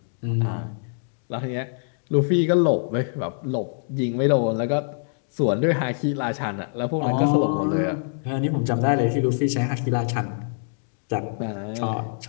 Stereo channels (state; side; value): silent; right; digital silence